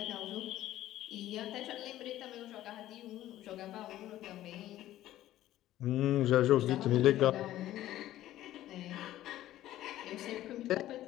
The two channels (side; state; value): right; quieter; 14.0 dB